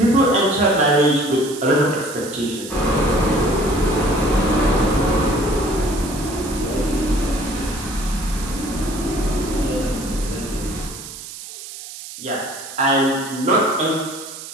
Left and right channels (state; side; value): noise; right; hiss, 12 dB below the sound